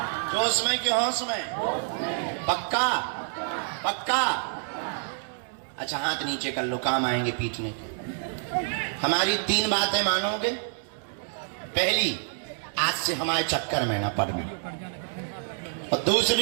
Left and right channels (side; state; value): left; silent; 60 dB below the other